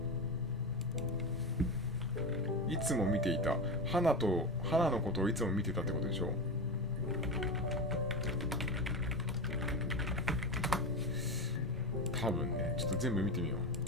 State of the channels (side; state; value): both; normal; correlation 0.20